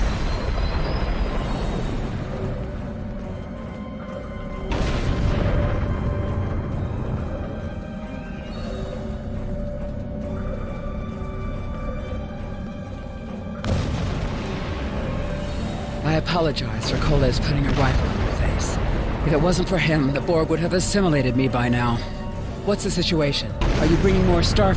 I apologize for Coles putting a rifle in my face. If it wasn't for him, the Borg would have assimilated me by now. What's the situation? Are you bringing more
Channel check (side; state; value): both; identical; correlation 1.00